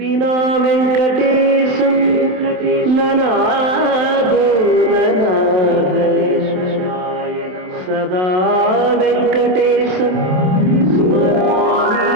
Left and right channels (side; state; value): left; late; 27 ms